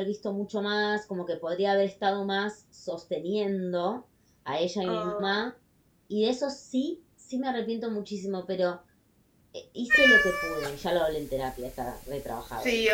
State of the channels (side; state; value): both; identical; correlation 1.00